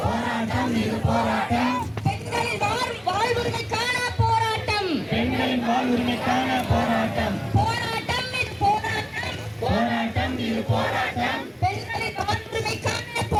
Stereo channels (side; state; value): both; identical; correlation 1.00